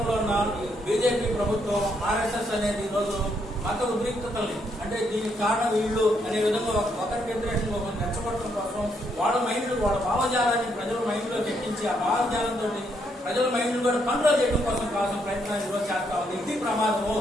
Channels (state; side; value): normal; both; correlation 0.75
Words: ఉన్న బీజేపీ ప్రభుత్వం, ఆర్ఎస్ఎస్ అనేది ఈరోజు మత ఉద్రిక్తతల్ని అంటే దీనికి కారణం వీళ్ళు అనే విధంగా ఒకరికి వ్యతిరేకంగా ఒకరిని రెచ్చగొట్టడం కోసం వాళ్ళ మైండ్, వాళ్ళ భావజాలాన్ని ప్రజల మైండ్ లో ఎక్కించి ఆ భావజాలంతో ప్రజల మైండ్ కూడా కంట్రోల్ చేయడం కోసం ప్రయత్నాలు ఈరోజు చేస్తా ఉంది. ఇది ప్రమాదము.